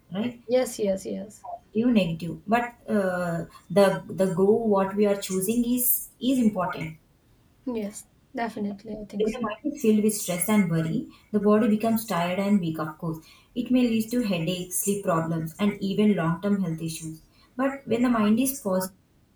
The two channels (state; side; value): identical; both; correlation 1.00